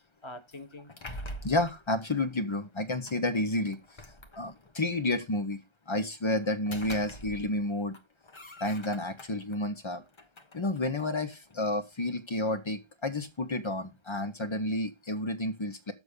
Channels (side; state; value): right; late; 1.3 ms